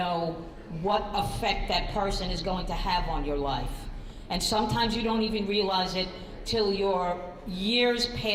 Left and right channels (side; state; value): both; identical; correlation 1.00